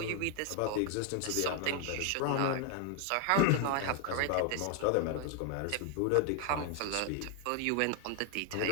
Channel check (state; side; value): different; both; correlation 0.00